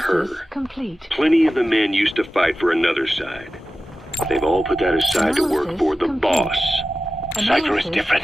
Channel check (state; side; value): normal; both; correlation 0.94